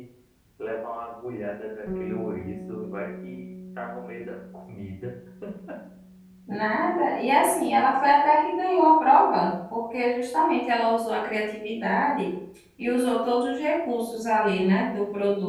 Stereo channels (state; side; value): identical; both; correlation 1.00